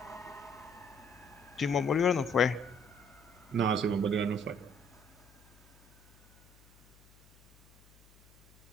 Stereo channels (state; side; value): noise; left; hum, 27 dB below the sound